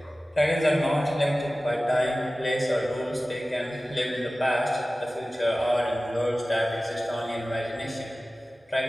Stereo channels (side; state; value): both; normal; correlation 0.96